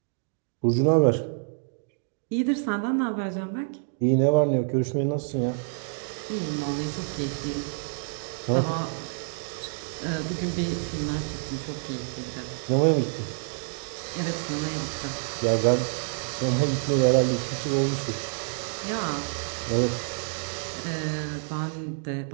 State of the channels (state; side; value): silent; left; digital silence